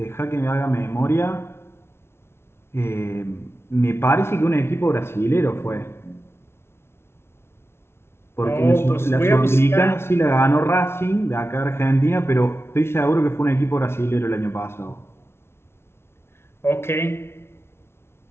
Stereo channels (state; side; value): late; right; 0.12 ms